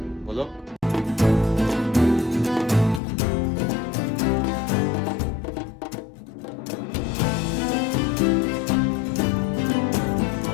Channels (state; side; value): drops out; right; at 3.0 s